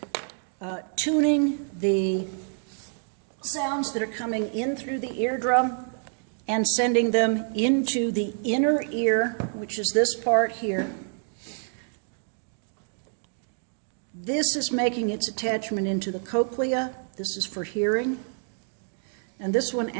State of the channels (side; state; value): left; silent; 59 dB below the other